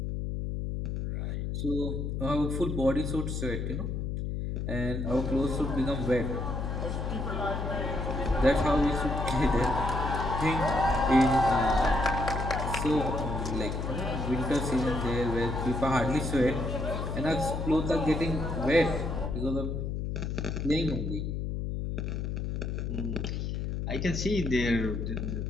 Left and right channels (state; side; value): noise; left; hum, 2 dB below the sound